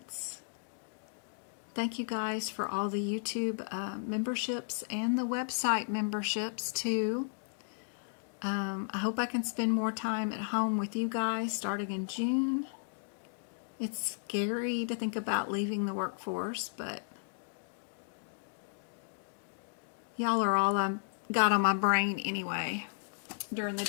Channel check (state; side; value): silent; right; digital silence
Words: Thank you guys for all the YouTube memberships and the website memberships too. I hope I can spend more time at home with you guys starting in June. It's scary to think about leaving the workforce, but y'all are all I've got on my brain anyway during the